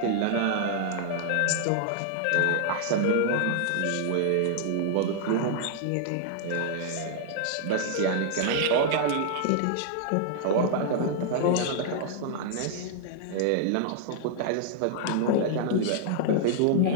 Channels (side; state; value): both; different; correlation 0.00